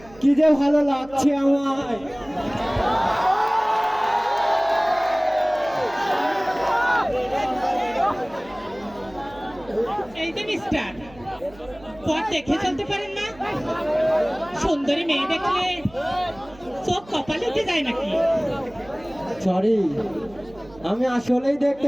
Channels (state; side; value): noise; right; hum, 23 dB below the sound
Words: কি যে ভালো লাগছে আমার। এই যে মিস্টার, পথ দেখে চলতে পারেন না? সুন্দরী মেয়ে দেখলে চোখ কপালে উঠে যায় নাকি? সরি, আমি আসলেই